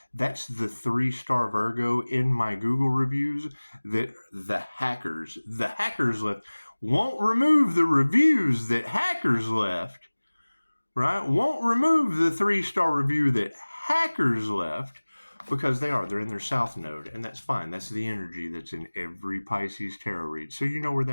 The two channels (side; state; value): both; inverted; correlation -1.00